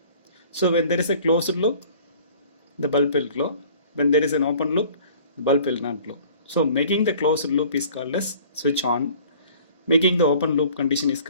So when there is a closed loop, the bulb will glow. When there is an open loop, the bulb will not glow. So making the closed loop is called as switch on. Making the open loop condition is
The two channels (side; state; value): both; inverted; correlation -0.50